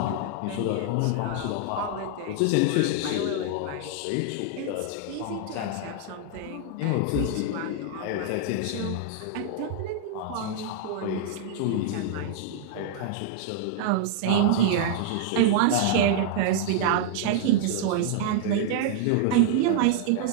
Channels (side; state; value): both; different; correlation -0.01